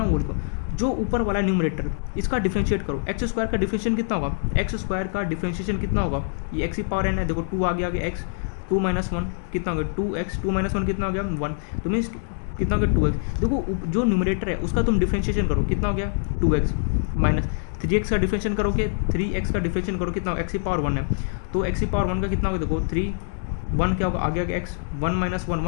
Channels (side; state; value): right; silent; digital silence